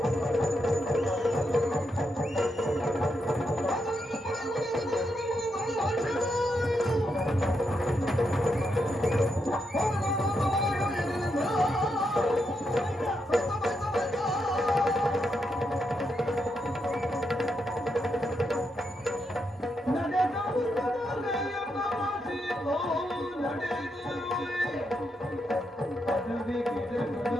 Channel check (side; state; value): both; normal; correlation 0.82